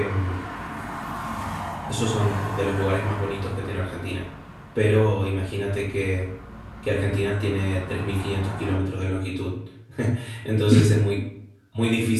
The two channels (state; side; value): identical; both; correlation 1.00